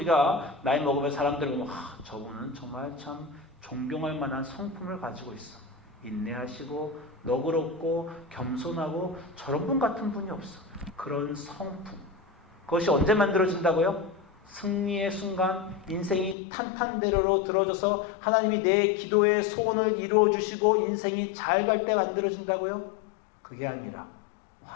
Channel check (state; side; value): drops out; right; at 16.4 s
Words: 나이 먹으면 사람들 보면 저분은 정말 참 존경할 만한 성품을 가지고 있어. 인내하시고 너그럽고 겸손하고 저런 분 같은 분이 없어. 그런 성품. 그것이 언제 만들어진다고요? 승리의 순간, 인생이 탄탄대로로 들어져서 하나님이 내 기도의 소원을 이루어 주시고 인생이 잘 갈 때 만들어진다고요? 그게 아니라